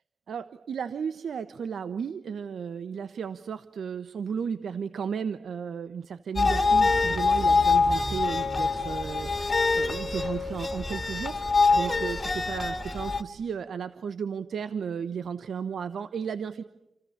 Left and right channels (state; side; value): normal; both; correlation 0.87